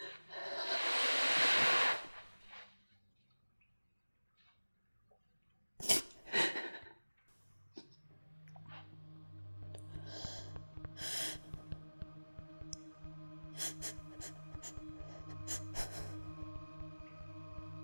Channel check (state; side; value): inverted; both; correlation -1.00